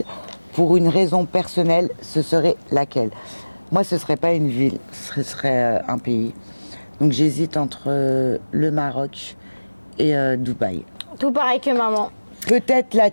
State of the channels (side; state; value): both; inverted; correlation -1.00